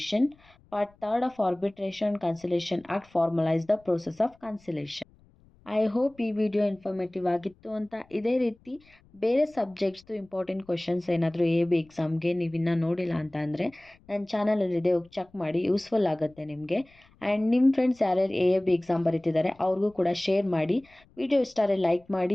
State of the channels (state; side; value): noise; left; rumble, 30 dB below the sound